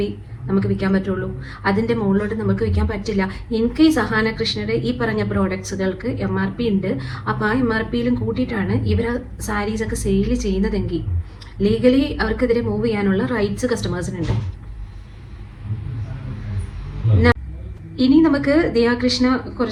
നമുക്ക് വിൽക്കാൻ പറ്റുള്ളൂ. അതിൻ്റെ മുകളിലോട്ട് നമുക്ക് വിൽക്കാൻ പറ്റില്ല. ഇൻ കേസ് അഹാന കൃഷ്ണയുടെ ഈ പറഞ്ഞ പ്രോഡക്ട്സുകൾക്ക് MRP ഉണ്ട്, അപ്പോൾ ആ MRPയിലും കൂട്ടിയിട്ടാണ് ഇവർ സാരീസൊക്കെ സെയിൽ ചെയ്യുന്നതെങ്കിൽ ലീഗലി അവർക്കെതിരെ മൂവ് ചെയ്യാനുള്ള റൈറ്റ്സ് കസ്റ്റമേഴ്സിനുണ്ട്. ഇനി നമുക്ക് ദിയാകൃഷ്ണ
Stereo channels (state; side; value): identical; both; correlation 1.00